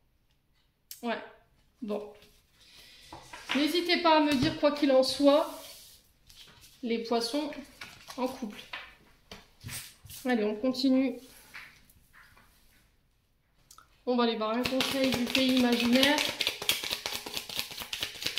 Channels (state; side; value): identical; both; correlation 1.00